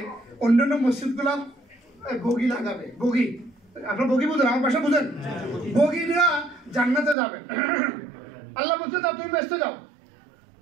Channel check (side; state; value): left; drops out; at 7.2 s